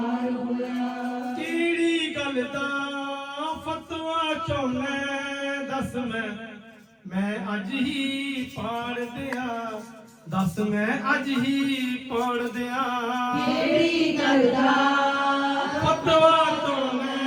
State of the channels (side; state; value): both; identical; correlation 1.00